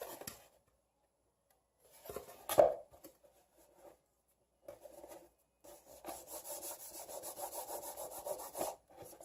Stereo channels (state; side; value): identical; both; correlation 1.00